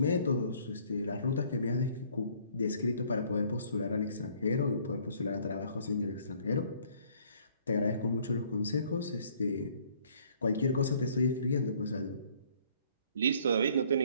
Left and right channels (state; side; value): inverted; both; correlation -0.60